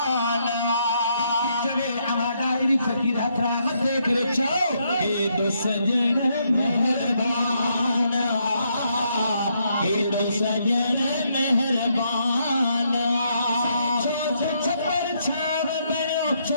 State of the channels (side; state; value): both; inverted; correlation -0.75